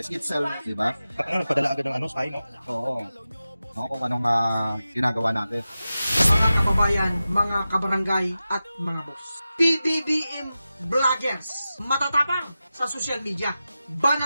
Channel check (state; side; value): inverted; both; correlation -0.93